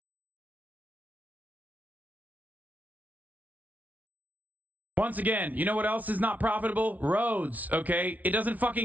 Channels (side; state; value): left; late; 0.073 ms